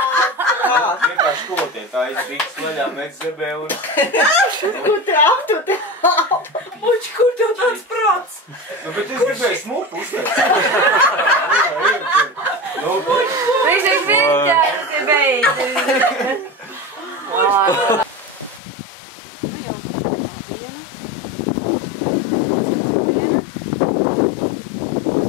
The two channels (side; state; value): right; drops out; at 18.6 s